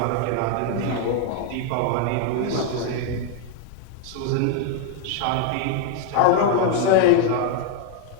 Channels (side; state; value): both; different; correlation 0.00